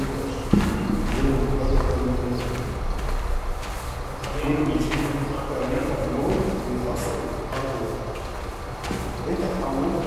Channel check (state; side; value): identical; both; correlation 1.00